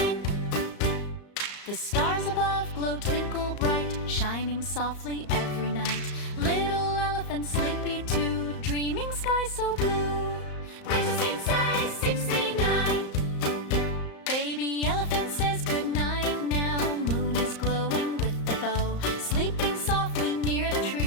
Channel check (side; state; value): right; late; 34 ms